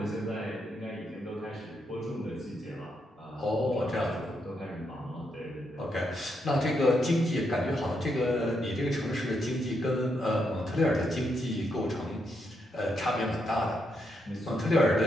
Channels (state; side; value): normal; both; correlation 0.80